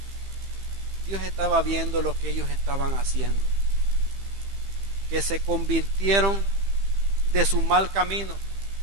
Dios estaba viendo lo que ellos estaban haciendo, que se convirtieron de su mal camino.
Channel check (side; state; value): left; late; 15 ms